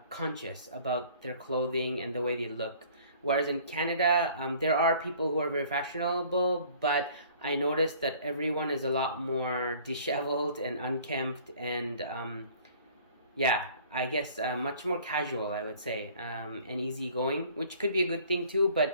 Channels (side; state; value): both; inverted; correlation -0.53